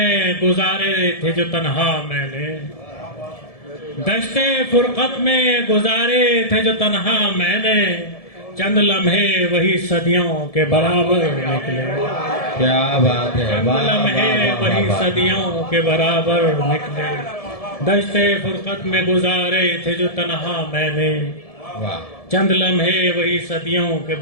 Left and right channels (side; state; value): right; late; 1.7 ms